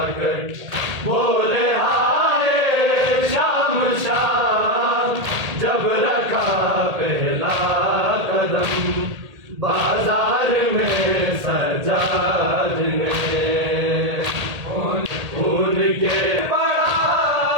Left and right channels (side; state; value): left; late; 1.8 ms